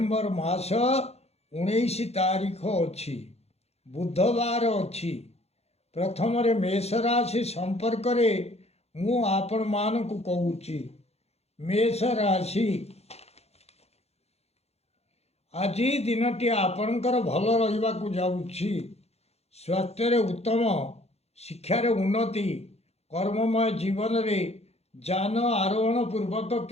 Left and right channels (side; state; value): right; late; 0.30 ms